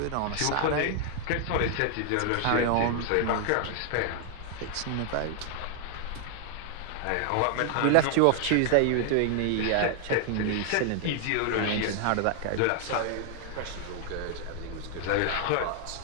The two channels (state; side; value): different; both; correlation 0.00